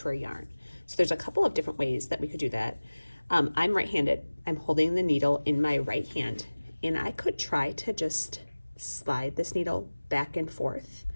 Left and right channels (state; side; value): inverted; both; correlation -1.00